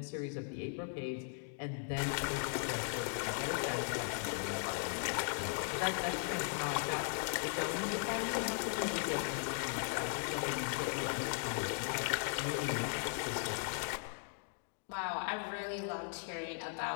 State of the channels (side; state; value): right; silent; 52 dB below the other